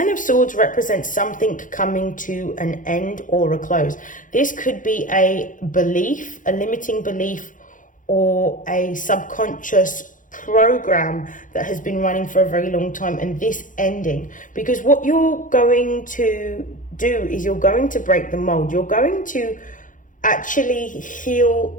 of Swords represents something coming to an end or a close. This could be a belief, a limiting belief, or a subconscious program that has been running for a very long time, and this ending. Because what you're going to do is you're going to break the mold. You're going to actually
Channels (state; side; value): late; right; 0.38 ms